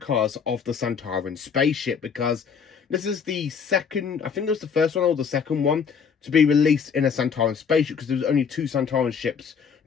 of the Sontaran spaceship, because this is the second, I think it was the first one or the second one to be released in a Sontaran spaceship, because there was only two Sontaran ships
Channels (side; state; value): right; quieter; 6.5 dB